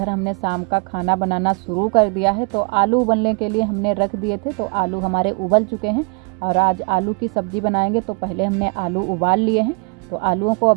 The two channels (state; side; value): quieter; left; 35.4 dB